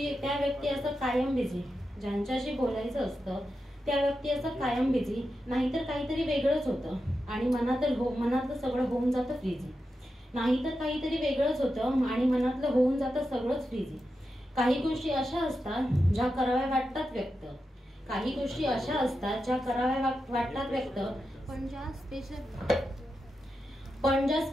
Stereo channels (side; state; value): both; normal; correlation 0.89